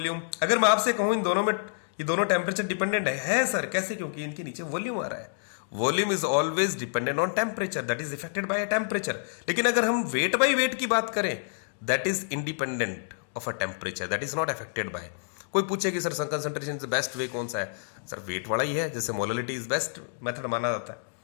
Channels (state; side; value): silent; right; digital silence